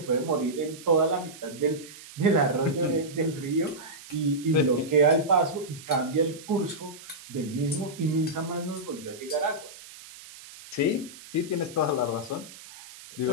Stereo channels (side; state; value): right; noise; hiss, 17 dB below the sound